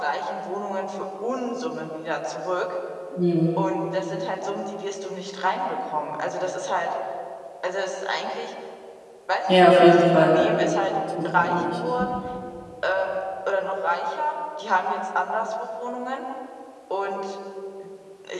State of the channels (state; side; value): identical; both; correlation 1.00